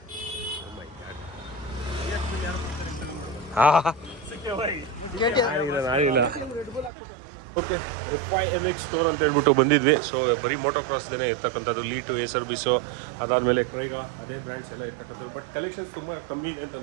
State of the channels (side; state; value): left; drops out; at 6.9 s